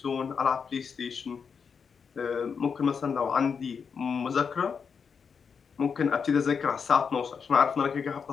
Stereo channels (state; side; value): quieter; right; 6.1 dB